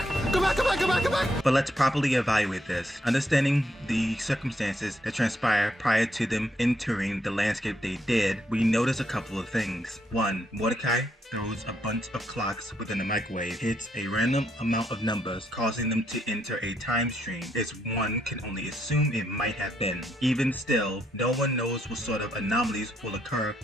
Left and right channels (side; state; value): both; normal; correlation 0.76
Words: Go back! Go back! Go back! Go back! But let's properly evaluate this, understanding the circumstances that transpired prior to them entering the landscape they did. We notice a couple of things. One, Mordecai throws a bunch of clocks within the microwave, hits a random amount of numbers, causing them to enter a time stream, as one can only assume it might have been. Even still, no one knows what sort of anomalies will occur